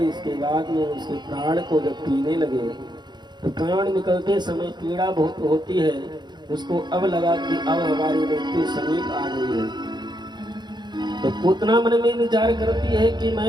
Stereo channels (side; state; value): left; late; 0.21 ms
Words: इसके बाद में उसके प्राण को जब पीने लगे तो प्राण निकलते समय पीड़ा बहुत होती है। उसको अब लगा कि अब हमारी मृत्यु समीप आ गई है। तो पूतना मन में विचार करती है कि